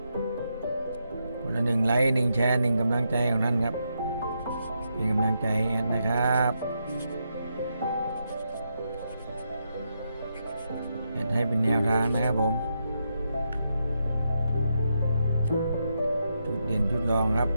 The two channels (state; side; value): inverted; both; correlation -0.83